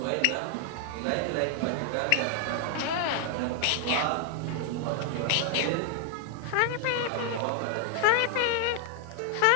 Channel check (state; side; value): different; both; correlation 0.00